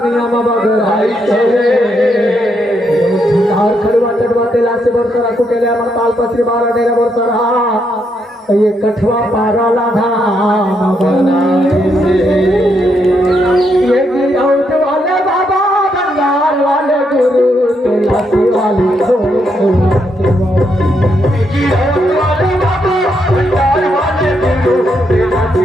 में बगराई से, खड़ुआ चढ़वा तेला से बरसरा कुटेले अमर ताल पत्री 12 डेरा बरसरा, ये कठवा पारा लाधा बनाए से, ये गिरौत वाले बाबा बंगाल वाले गुरु तेला से वाली गिरौत वाले बाबा बंगाल वाले गुरु तेला से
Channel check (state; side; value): normal; both; correlation 0.78